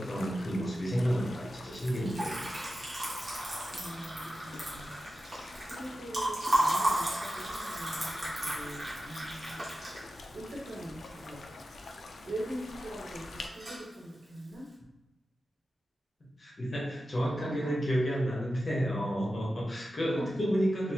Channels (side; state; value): both; normal; correlation 0.92